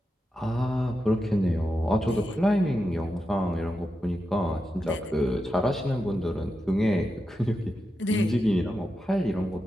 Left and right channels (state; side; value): normal; both; correlation 0.88